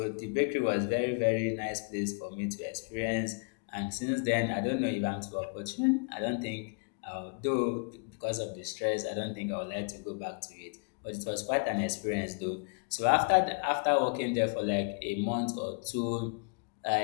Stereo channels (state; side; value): quieter; right; 37.6 dB